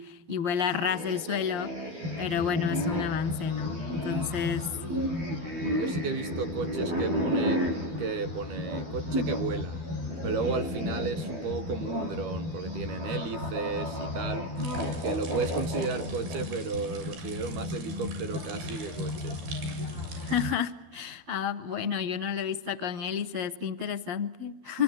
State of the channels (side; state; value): left; late; 12 ms